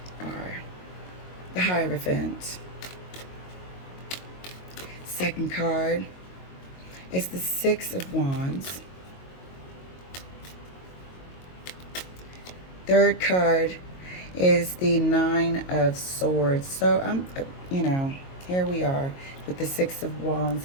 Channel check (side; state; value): right; late; 22 ms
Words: are the Hierophant. Second card is the Six of Wands. Third card is the Nine of Swords. So, here we are with the Six of Wands